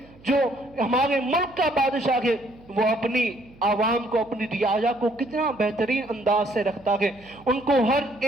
جو ہمارے ملک کا بادشاہ ہے, وہ اپنی عوام کو, اپنی رعایا کو کتنا بہترین انداز سے رکھتا ہے, ان کو ہر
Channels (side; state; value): right; noise; hum, 25 dB below the sound